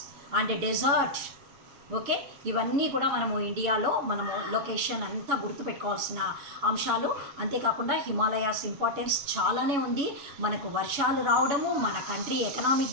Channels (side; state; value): left; late; 7.1 ms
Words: and desert. Okay, ఇవన్నీ కూడా మనము ఇండియాలో మనము location అంతా గుర్తుపెట్టుకోవాల్సిన అంశాలు. అంతేకాకుండా Himalayas importance చాలానే ఉంది. మనకు వర్షాలు రావడము, మన కంట్రీ